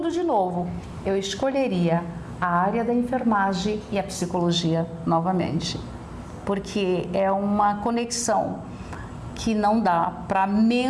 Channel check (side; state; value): both; identical; correlation 1.00